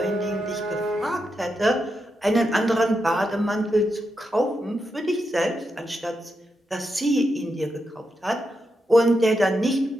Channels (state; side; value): normal; both; correlation 0.85